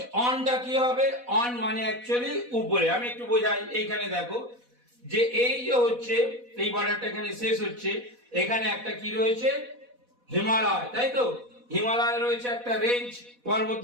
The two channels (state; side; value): late; left; 4.1 ms